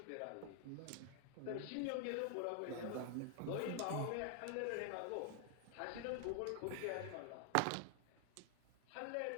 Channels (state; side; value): different; both; correlation 0.00